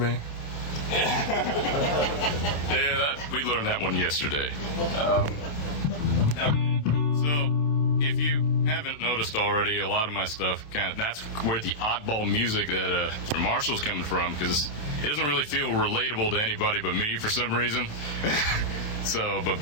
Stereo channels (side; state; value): right; late; 28 ms